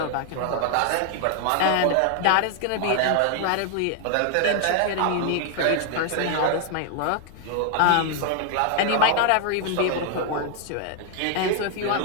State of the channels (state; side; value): different; both; correlation 0.00